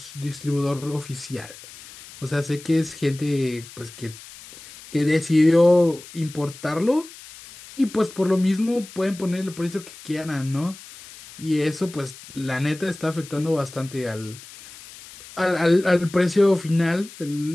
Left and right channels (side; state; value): left; noise; hiss, 18 dB below the sound